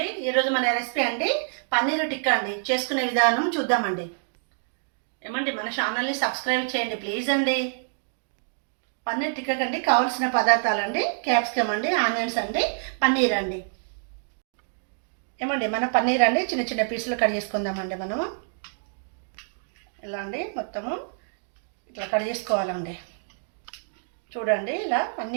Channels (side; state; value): left; silent; digital silence